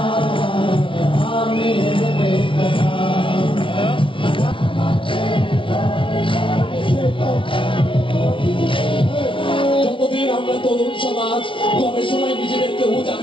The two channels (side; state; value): right; late; 0.25 ms